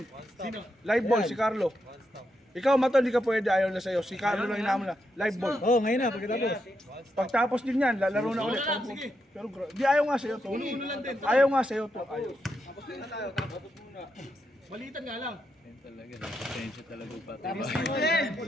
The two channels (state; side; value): normal; both; correlation 0.83